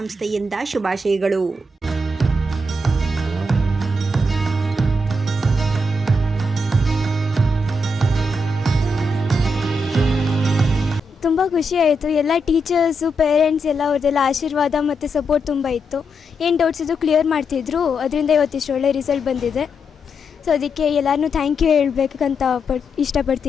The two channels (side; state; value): both; normal; correlation 0.82